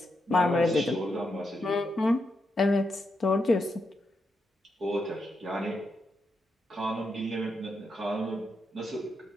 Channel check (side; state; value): both; normal; correlation 0.83